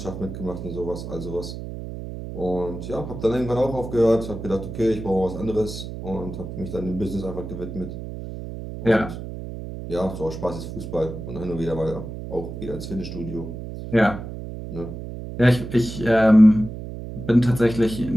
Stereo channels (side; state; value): right; noise; hum, 9 dB below the sound